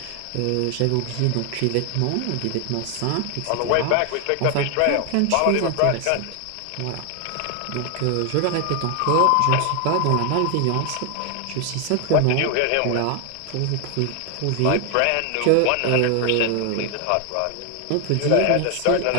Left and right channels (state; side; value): different; both; correlation 0.01